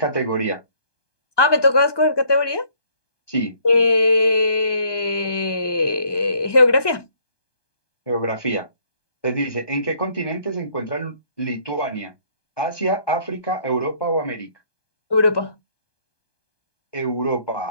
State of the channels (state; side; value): late; right; 1.2 ms